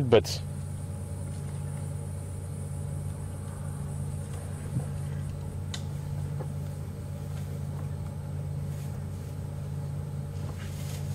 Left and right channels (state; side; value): identical; both; correlation 1.00